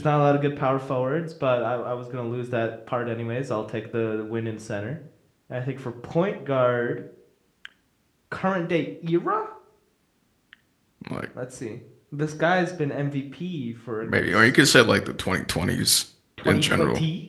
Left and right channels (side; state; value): both; identical; correlation 1.00